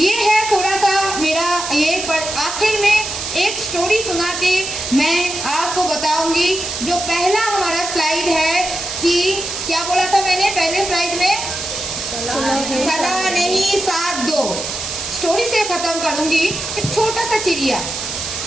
है थोड़ा सा मेरा ये, पर आखिर में एक स्टोरी सुना के मैं आपको बताऊंगी। जो पहला हमारा स्लाइड है कि क्या बोला था मैंने पहले स्लाइड में? सलाह नहीं साथ दो। स्टोरी से खत्म करूंगी। एक छोटा सा चिड़िया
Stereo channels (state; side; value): noise; right; hiss, 5 dB below the sound